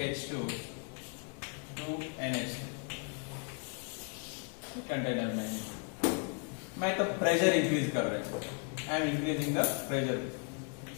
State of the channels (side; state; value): right; quieter; 38.7 dB